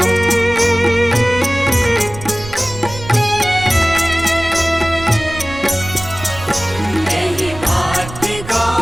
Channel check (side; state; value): right; noise; rumble, 14 dB below the sound